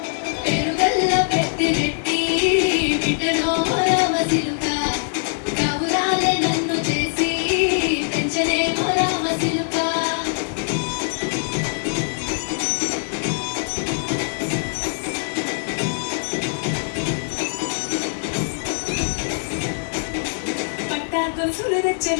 పెరుగల్లా పెత్తిరెట్టి బిడ్డలో రామసిలుక కవురాలే నన్ను చేసి పెంచనే రామసిలుక పట్టా గొలుసులు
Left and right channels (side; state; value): right; silent; digital silence